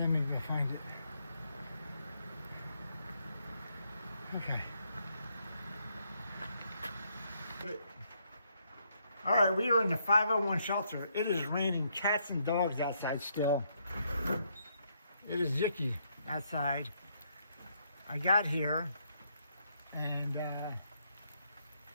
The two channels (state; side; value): inverted; both; correlation -0.75